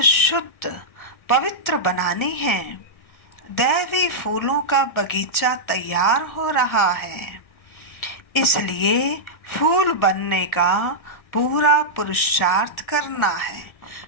शुद्ध पवित्र बनानी है। दैवी फूलों का बगीचा तैयार हो रहा है, इसलिए फूल बनने का पूरा पुरुषार्थ करना है,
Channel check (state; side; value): late; right; 1.6 ms